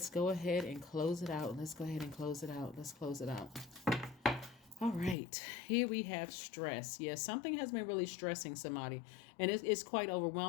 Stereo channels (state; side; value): drops out; right; at 5.2 s